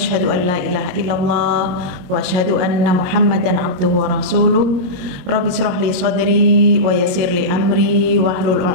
an la ilaha illallah wa asyhadu anna Muhammadan abduhu wa rasuluh. Rabbi shrah li sadri wa yassir li amri wahlul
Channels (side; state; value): left; late; 22 ms